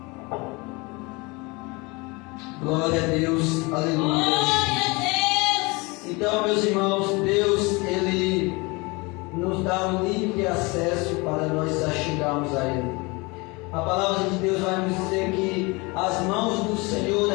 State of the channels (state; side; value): quieter; right; 26.2 dB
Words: Glória a Deus, aleluia. Então, meus irmãos, Deus, Ele nos dá um livre acesso para nós chegarmos a Ele. A palavra de Deus vai nos dizer que as mãos do Senhor,